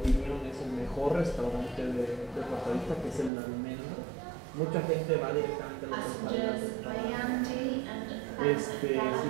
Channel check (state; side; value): drops out; left; at 3.3 s